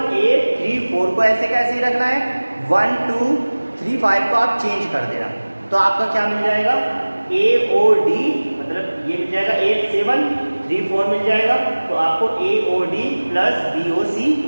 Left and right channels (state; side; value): inverted; both; correlation -1.00